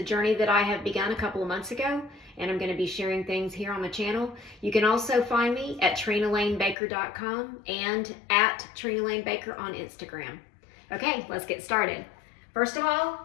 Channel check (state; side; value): drops out; right; at 6.8 s